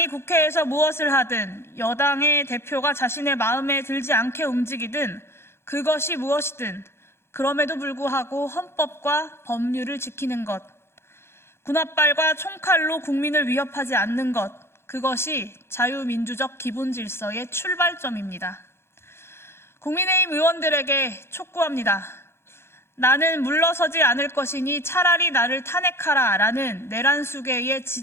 국회에서 무엇을 하든 여당의 대표가 자신의 마음에 들지 않게 움직이든 그것이 무엇이든 그럼에도 불구하고 헌법과 법률을 지키는 것, 군홧발과 총칼로 국민을 위협하지 않는 것, 그것이 자유민주적 기본 질서의 출발점입니다. 국민의힘 의원들에게 촉구합니다. 나는 물러서지 않을 것이니 차라리 나를 탄핵하라 라는 내란 수계의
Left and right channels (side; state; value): right; late; 0.12 ms